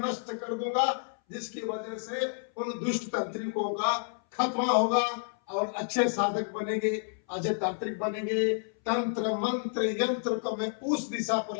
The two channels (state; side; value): silent; right; 58 dB below the other